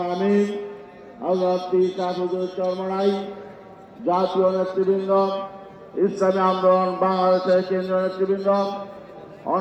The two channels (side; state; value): both; identical; correlation 1.00